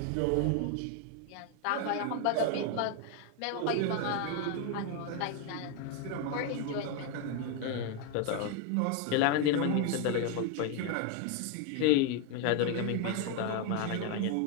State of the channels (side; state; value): both; different; correlation 0.01